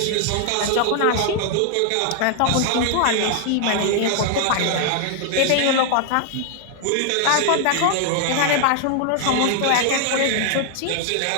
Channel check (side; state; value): both; different; correlation 0.00